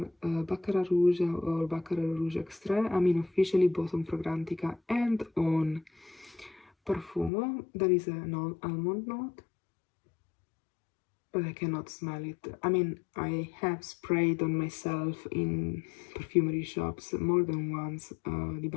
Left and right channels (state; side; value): drops out; right; at 7.3 s